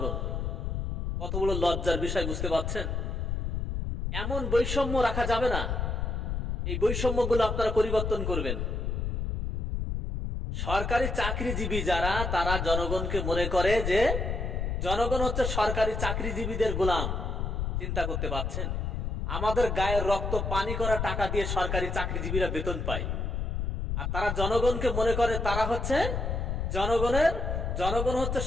কত বড় লজ্জার বিষয় বুঝতে পারছেন? এমন বৈষম্য রাখা যাবে না। এই বৈষম্যগুলো আপনারা পরিবর্তন করবেন। সরকারি চাকরিজীবী যারা, তারা জনগণকে মনে করে যে জনগণ হচ্ছে সরকারি চাকরিজীবীদের গোলাম। চিন্তা করতে পারছেন? আমাদের গায়ের রক্ত পানি করা টাকা দিয়ে সরকারি চাকরিজীবীরা বেতন পায়, আর তারা জনগণকে মনে করে তারা হচ্ছে জনগণ হচ্ছে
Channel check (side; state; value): left; noise; rumble, 2 dB below the sound